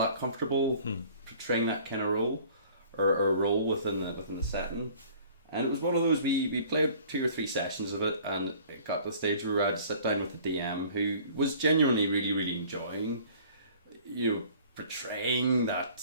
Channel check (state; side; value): inverted; both; correlation -0.51